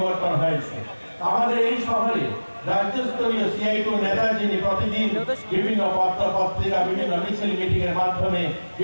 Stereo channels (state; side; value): inverted; both; correlation -1.00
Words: হয়েছে। আমাদের এই শহরে রাজ্যস্তরীয় CI2 নেতা যিনি প্রতিদিন বিভিন্ন পত্র পত্রিকা, বিভিন্ন মিছিল মিটিং এর মাধ্যমে